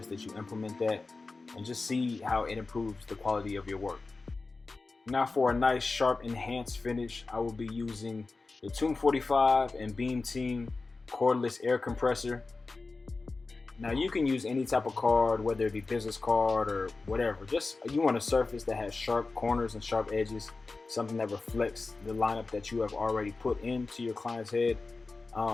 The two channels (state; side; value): quieter; right; 3.8 dB